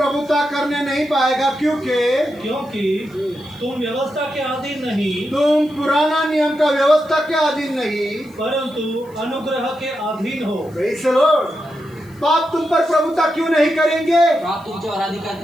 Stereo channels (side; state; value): left; noise; hiss, 29 dB below the sound